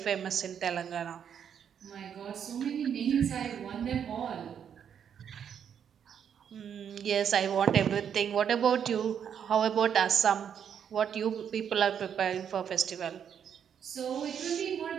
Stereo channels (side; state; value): left; quieter; 8.2 dB